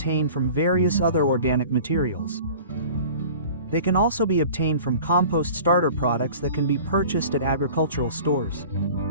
from various other organic materials. They can also be obtained from compost starter products that can be purchased at agricultural stores.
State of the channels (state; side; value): inverted; both; correlation -0.42